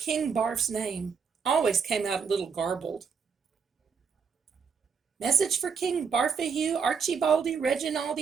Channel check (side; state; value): left; quieter; 6.0 dB